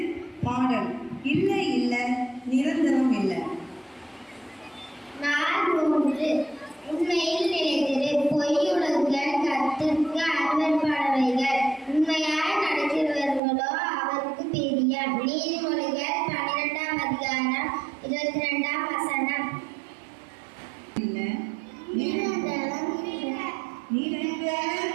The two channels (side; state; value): left; drops out; at 13.4 s